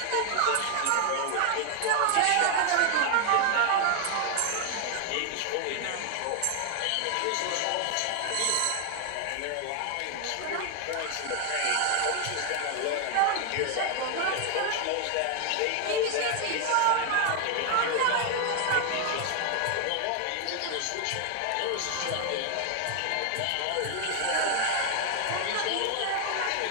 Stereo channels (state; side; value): different; both; correlation 0.00